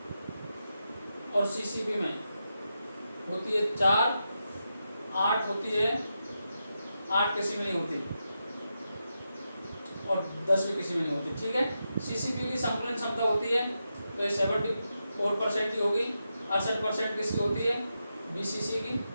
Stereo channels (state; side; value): inverted; both; correlation -0.87